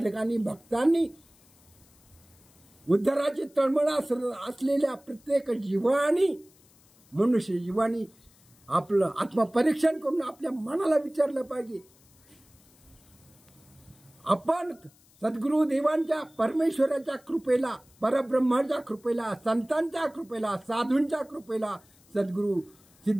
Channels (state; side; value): noise; left; hiss, 29 dB below the sound